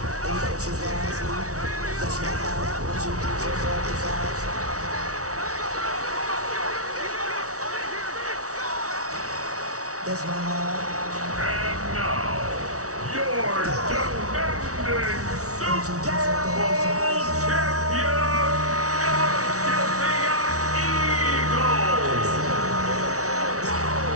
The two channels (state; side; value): late; left; 0.66 ms